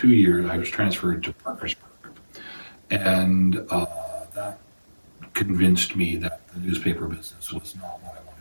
years I was transferred to Parkersburg, and that convinced me that the newspaper business was not what I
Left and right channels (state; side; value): inverted; both; correlation -1.00